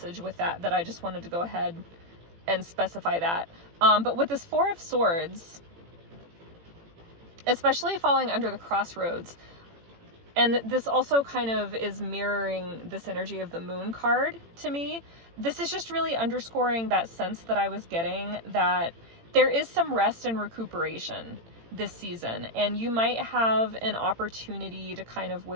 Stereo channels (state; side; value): late; left; 18 ms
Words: with that I just wanted to go ahead and specify that. But with this 4 of Swords, especially falling under the crossroads, and this also kind of is mirroring this energy of the Moon card to me. This is just really underscoring that sense that I was getting that there is some rest and recuperation this season, and you might have an opportunity to kind of